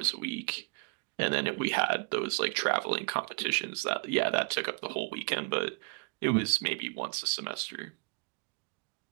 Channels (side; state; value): left; quieter; 32.5 dB